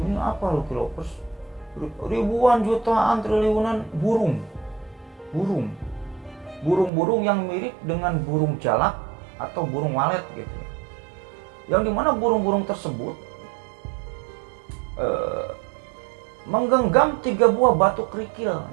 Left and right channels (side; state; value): left; drops out; at 6.9 s